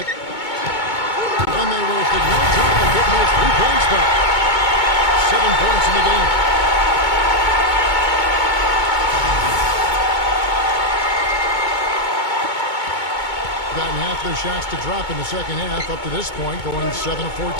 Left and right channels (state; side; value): late; right; 2.2 ms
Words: And they wasted no time getting those 3 points back. 7 points in the game. Gotten half their shots to drop in the second half up to this point, going 7 of